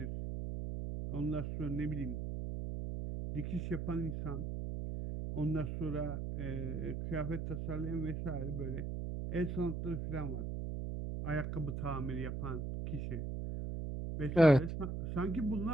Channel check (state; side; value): noise; right; hum, 3 dB below the sound